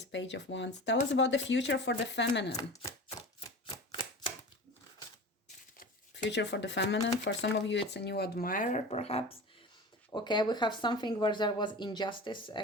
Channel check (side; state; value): both; normal; correlation 0.34